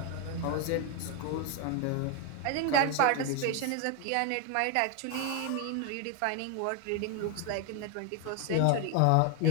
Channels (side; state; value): both; different; correlation 0.01